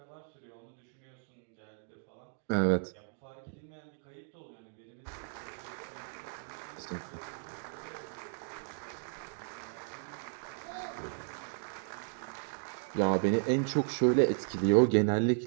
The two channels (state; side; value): silent; left; digital silence